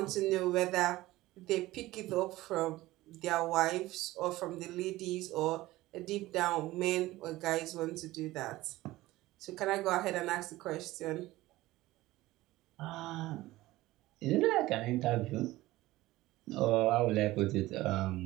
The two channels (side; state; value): left; quieter; 17.6 dB